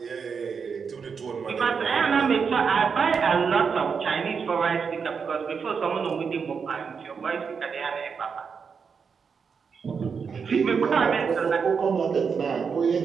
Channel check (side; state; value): left; quieter; 6.0 dB